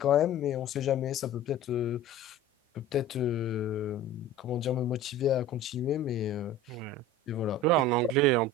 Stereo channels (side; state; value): both; normal; correlation 0.38